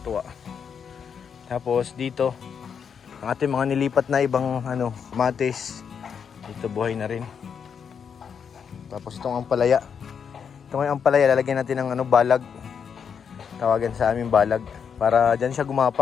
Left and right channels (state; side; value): quieter; right; 7.0 dB